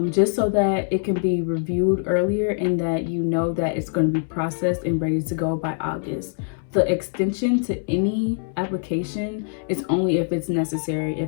just so that it can be reviewed earlier and that you know that it's going to be processed and ready to go by August. The extension to any application is only if it's necessary.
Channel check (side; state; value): right; silent; 63 dB below the other